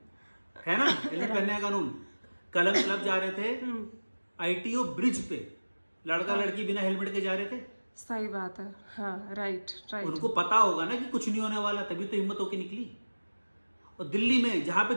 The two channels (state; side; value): inverted; both; correlation -1.00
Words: ना, हेलमेट पहनने का कानून। कलम क्लब जा रहे थे आईटीओ ब्रिज पे, लड़का लड़की बिना हेलमेट के जा रहे थे। सही बात है। हाँ राइट राइट। उनको पता होगा ना कि कुछ नहीं होने वाला, तभी तो हिम्मत होके निकली। और दिल्ली में, जहां पे